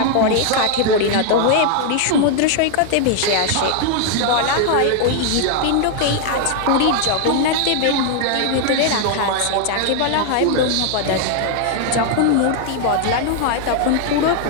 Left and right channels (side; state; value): both; different; correlation 0.00